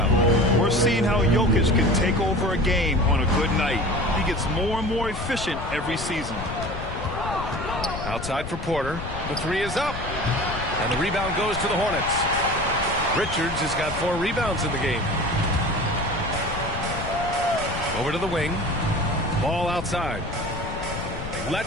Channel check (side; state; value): left; noise; rumble, 8 dB below the sound